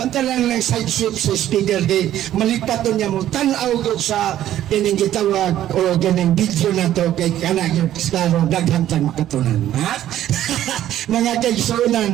ng side sweep sa speaker di malipat doon niya mo tanaw doon sa kining gitawag o kining video na to kay kanang klaro daghantang makatunan, ha? Mga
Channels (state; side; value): quieter; left; 12.3 dB